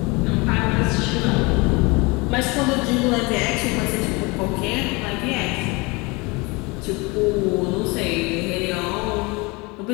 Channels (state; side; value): quieter; right; 26.3 dB